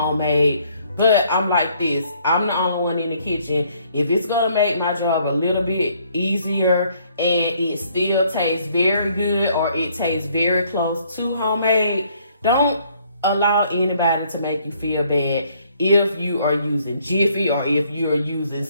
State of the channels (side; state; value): both; inverted; correlation -0.65